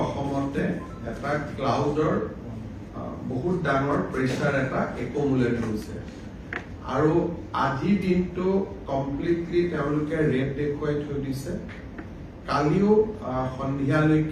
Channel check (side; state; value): both; identical; correlation 1.00